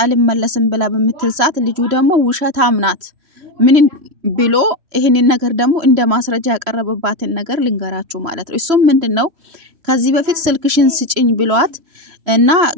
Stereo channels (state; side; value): late; left; 3.1 ms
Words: አልመለስም ብላ በምትል ሰዓት ልጁ ደግሞ ውሸታም ናት ምን ብሎ ይሄንን ነገር ደግሞ እንደ ማስረጃ ያቀረበባትን ነገር ልንገራችሁ ማለት ነው። እሱም ምንድነው ከዚህ በፊት ስልክሽን ስጭኝ ብሏት እና